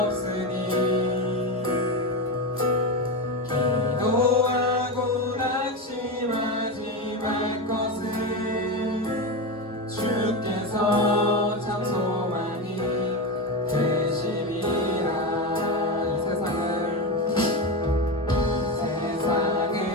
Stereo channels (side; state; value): both; normal; correlation 0.16